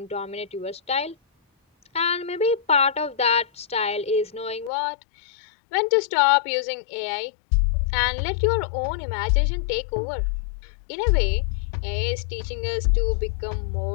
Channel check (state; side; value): drops out; right; at 4.7 s